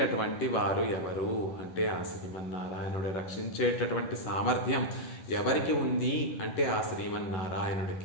వారు ఎవరు అంటే ఆ శ్రీమన్నారాయణుడు. రక్షించేటటువంటి సామర్థ్యం ఎవరికి ఉంది అంటే ఆ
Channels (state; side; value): late; right; 11 ms